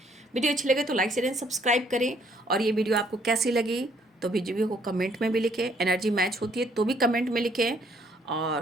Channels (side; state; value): both; normal; correlation 0.66